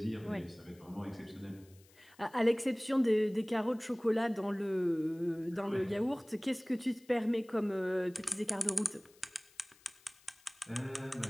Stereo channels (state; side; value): noise; left; hiss, 28 dB below the sound